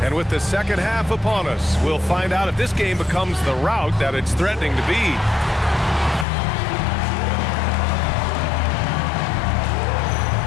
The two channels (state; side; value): drops out; right; at 6.2 s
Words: And with the second half upon us, we'll find out if this game becomes the rout that it's threatening to be.